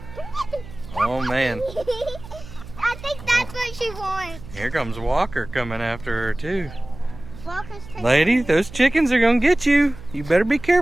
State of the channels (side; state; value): right; noise; hum, 16 dB below the sound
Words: Oh, man. I think that's what she wants. Here comes Walker coming after her, too. Walker's taking Lady, those chickens are gonna get you. You better be